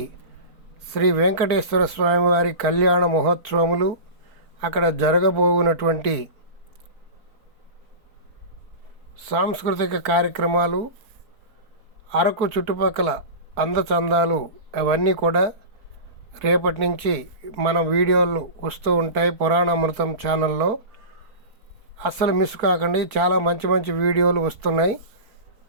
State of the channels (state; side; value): late; left; 4.4 ms